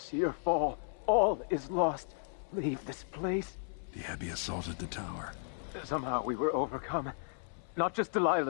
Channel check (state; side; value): silent; right; 55 dB below the other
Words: fall. All is lost. Leave this place. The Abbey assaulted the tower. Somehow we were overcome. Not just